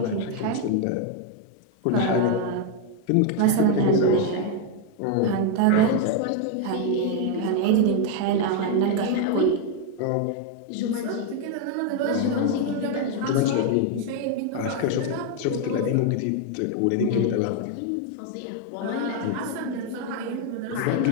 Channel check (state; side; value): different; both; correlation 0.01